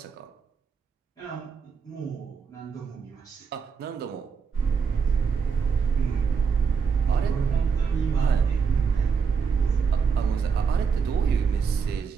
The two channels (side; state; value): left; quieter; 5.9 dB